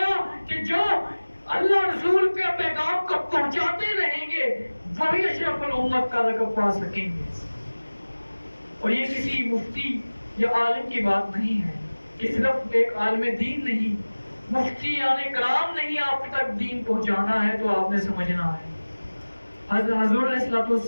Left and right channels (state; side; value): inverted; both; correlation -1.00